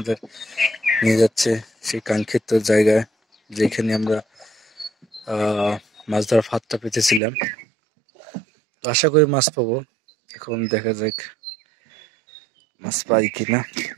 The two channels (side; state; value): left; drops out; at 7.2 s